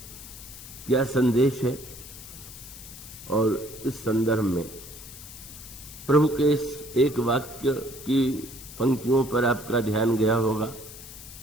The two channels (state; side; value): noise; left; hiss, 15 dB below the sound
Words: क्या संदेश है। और इस संदर्भ में प्रभु के इस एक वाक्य की पंक्तियों पर आपका ध्यान गया होगा।